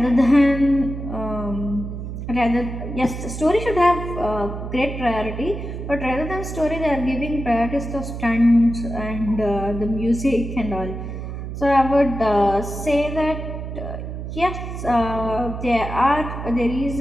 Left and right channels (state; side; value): noise; right; hum, 7 dB below the sound